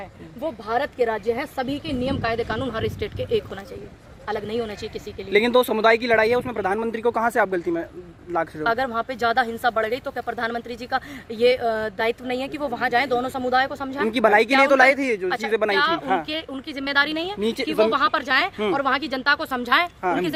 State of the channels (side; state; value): both; identical; correlation 1.00